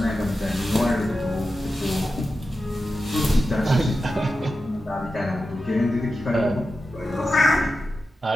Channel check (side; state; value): both; normal; correlation 0.91